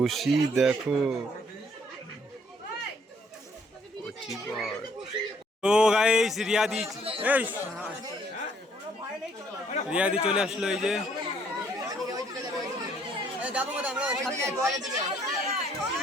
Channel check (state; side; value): normal; both; correlation 0.65